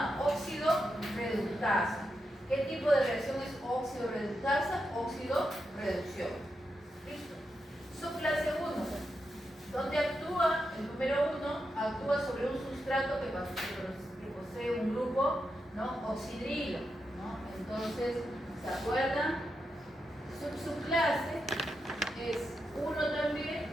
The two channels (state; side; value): normal; both; correlation 0.86